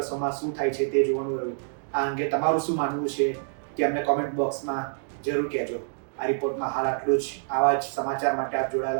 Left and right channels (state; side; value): silent; left; digital silence